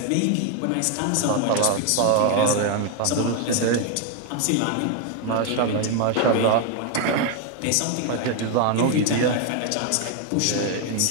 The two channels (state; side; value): different; both; correlation 0.01